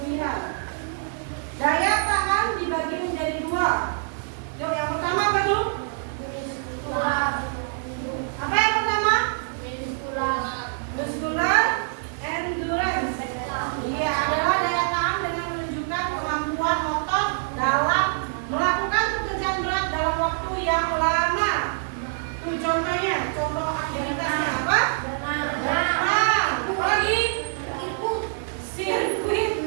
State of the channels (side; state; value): left; silent; digital silence